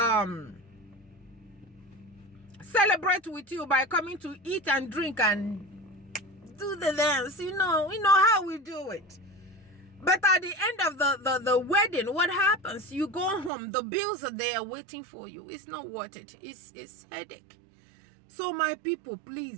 celebrate with you by coming to eat and drink and do the dance. You know how we do it. But at the end of the wedding, what happens? You go home, the bills are there waiting for you. It's not worth it. It's headache. So my people,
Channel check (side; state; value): left; drops out; at 13.5 s